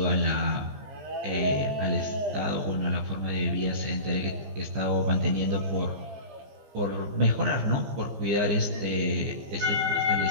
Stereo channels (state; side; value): late; left; 15 ms